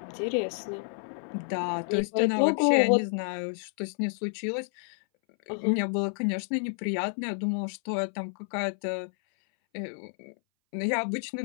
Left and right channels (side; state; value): right; silent; 58 dB below the other